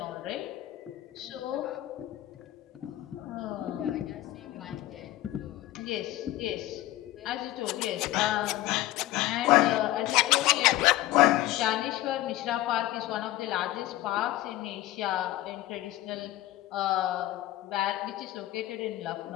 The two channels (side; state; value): right; quieter; 15.8 dB